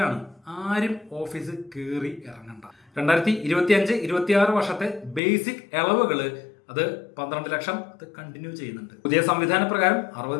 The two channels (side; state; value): right; drops out; at 5.2 s